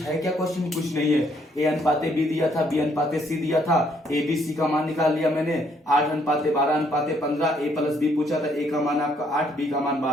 है क्या क्वेश्चन में, कुछ नहीं है। ए अनुपाते बी दिया था, बी अनुपाते सी दिया था, ए बी सी का मान निकाल लिया मैंने, 8 अनुपाते 12 अनुपाते 15, ए प्लस बी पूछा था, ए का मान आपका 8, बी का मान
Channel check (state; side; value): normal; both; correlation 0.68